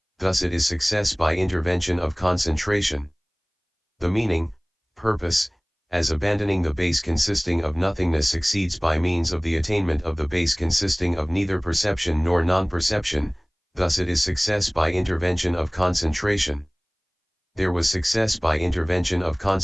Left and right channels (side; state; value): both; identical; correlation 1.00